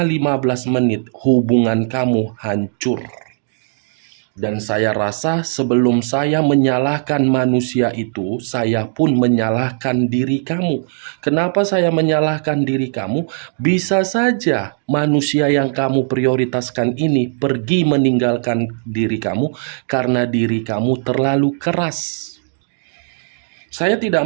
15 menit hubungan kamu hancur. Dan saya rasa sebelum saya menyalahkan manusia itu, saya pun menyalahkan diri kamu. Kenapa saya menyalahkan diri kamu? Bisa saja manusia yang kamu prioritaskan ini pergi meninggalkan diri kamu karena diri kamu terlalu keras. Saya tidak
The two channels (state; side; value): silent; left; 67 dB below the other